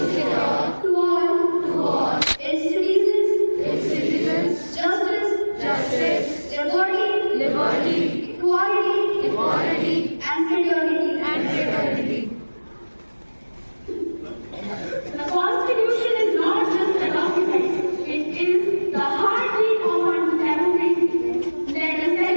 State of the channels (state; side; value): inverted; both; correlation -1.00